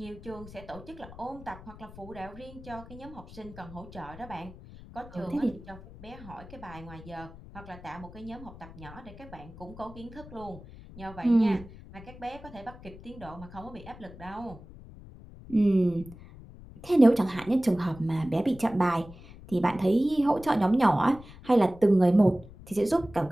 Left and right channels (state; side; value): noise; left; rumble, 17 dB below the sound